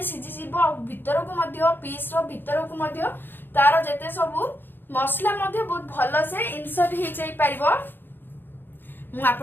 सिजी जीवो आ भीतर को मध्ये पीस रो भीतर को मध्ये तार जेते सब मसला मध्ये बहुत भलो से इंसर्ट हे जाई परिबो। मु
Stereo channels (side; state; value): right; late; 0.097 ms